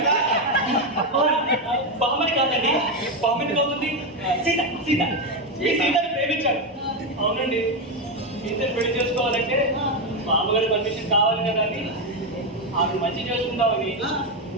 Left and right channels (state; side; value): normal; both; correlation 0.08